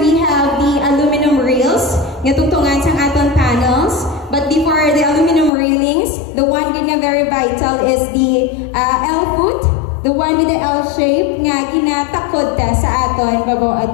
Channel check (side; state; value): right; drops out; at 5.5 s